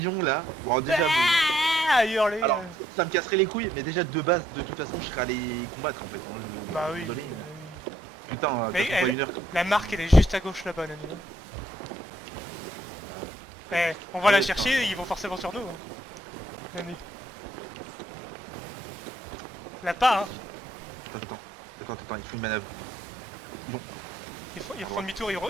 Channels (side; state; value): both; normal; correlation 0.70